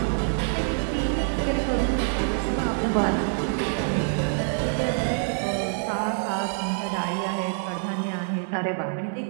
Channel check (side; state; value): left; silent; 61 dB below the other